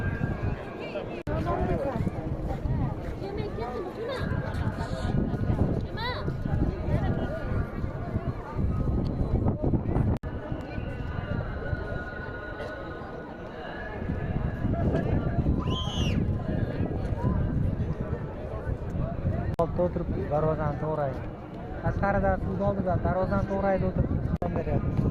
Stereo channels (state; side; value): identical; both; correlation 1.00